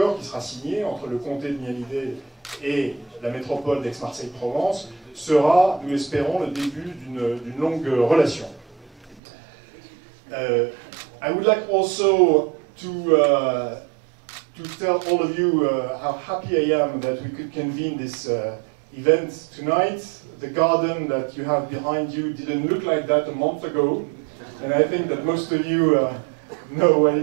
qui sera signé entre le comté de Miami-Dade et la métropole d'Aix-Marseille-Provence sera, nous l'espérons, le début d'une longue relation. I would like also to tell all of you how happy I am that we could convene this event tonight. The garden that you have behind you didn't look like that a month ago, and I think that most of you know what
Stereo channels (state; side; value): drops out; left; at 9.2 s